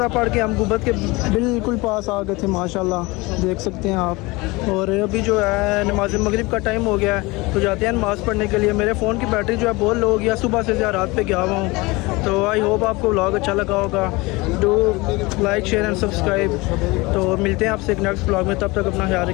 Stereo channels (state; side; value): quieter; right; 23.5 dB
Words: पढ़ के हम गुंबद के बिल्कुल पास आ गए थे माशाल्लाह, देख सकते हैं आप। और अभी जो है नमाज मगरिब का टाइम हो गया है, तो जाते हैं नमाज़ पढ़ने के लिए। मेरे फ़ोन की बैटरी जो है बहुत लो हो गया, सुबह से रात पे गया हुआ हूँ। तो आई होप आपको व्लॉग अच्छा लगा होगा। Do like share and subscribe. तो मिलते हैं आपसे एक नेक्स्ट व्लॉग में, तब तक अपना ख्याल